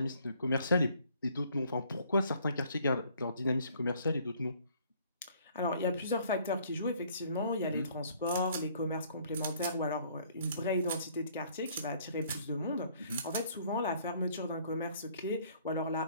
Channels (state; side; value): inverted; both; correlation -0.60